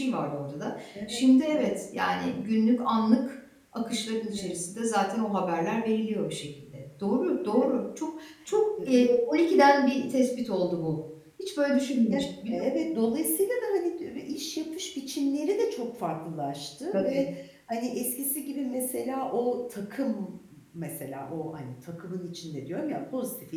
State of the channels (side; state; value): both; identical; correlation 1.00